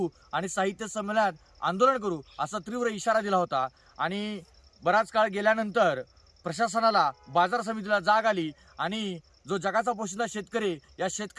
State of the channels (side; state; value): both; identical; correlation 1.00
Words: आणि साहित्य संमेलनात आंदोलन करू असा तीव्र इशारा दिला होता. आणि बराच काळ गेल्यानंतर प्रशासनाला, बाजार समितीला जाग आली आणि जो जगाचा पोशिंदा शेतकरी या